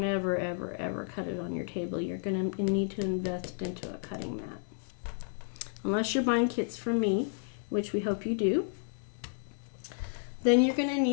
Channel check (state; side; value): silent; right; digital silence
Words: ever cut it on your table. You're going to need to invest into a cutting mat. Unless you're buying kits from me, which we hope you do. Then you're going to